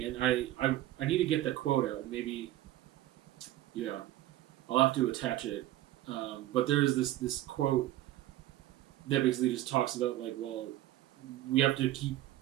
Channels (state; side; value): quieter; left; 14.7 dB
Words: And I need to get that quote out, and maybe, yeah, I'll have to attach it. But there's this quote that basically just talks about, like, well, we have to keep